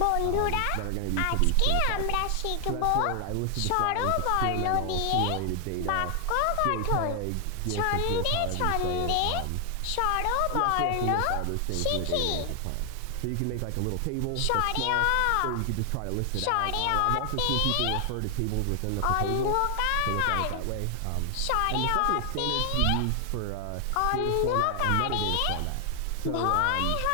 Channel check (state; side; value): different; both; correlation 0.00